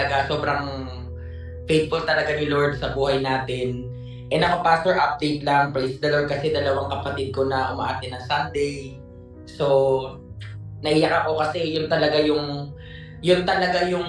Sobrang faithful talaga ni Lord sa buhay natin. And ako, Pastor, update lang. Praise the Lord kasi dalawang kapatid ko na umaati ng Sunday. So, naiyak ako kasi yun talaga yung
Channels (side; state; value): both; identical; correlation 1.00